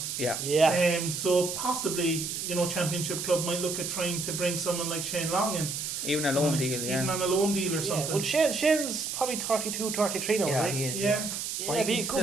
Yeah. So possibly Championship club might look at trying to bring someone like Shane Long in. Even a loan deal, Even on a loan deal or something. Well, Shane's probabbe 32, 33 now, isn't he? Is, yeah.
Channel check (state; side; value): noise; right; hiss, 4 dB below the sound